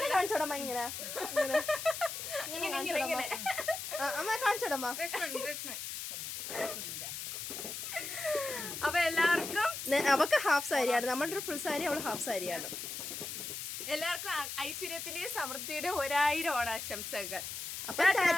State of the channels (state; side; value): noise; left; hiss, 6 dB below the sound